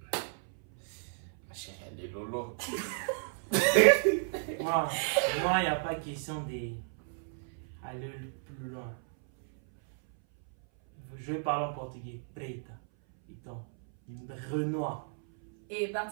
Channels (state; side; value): silent; left; 56 dB below the other